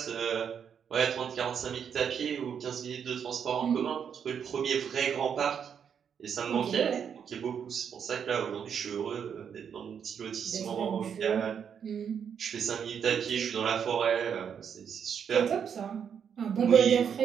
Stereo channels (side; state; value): left; quieter; 7.6 dB